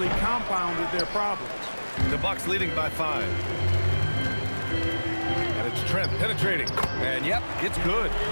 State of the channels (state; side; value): inverted; both; correlation -1.00